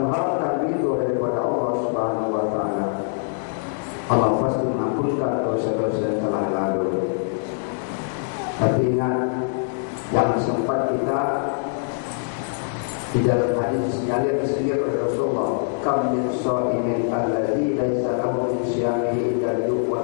ridho daripada Allah Subhanahu wa taala, Allah pasti mengampunkan dosa-dosa yang telah lalu. Tapi ingat, yang sempat kita di dalam hadis sinyalir oleh Rasulullah, kam min shaimin alladzi laisa lahu min siyamihi illa al-yuq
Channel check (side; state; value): right; silent; 63 dB below the other